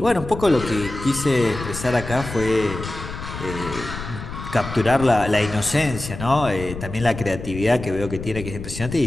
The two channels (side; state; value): left; noise; rumble, 9 dB below the sound